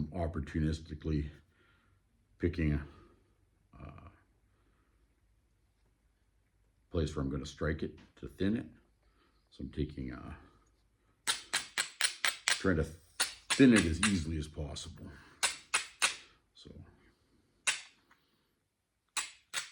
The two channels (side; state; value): both; identical; correlation 1.00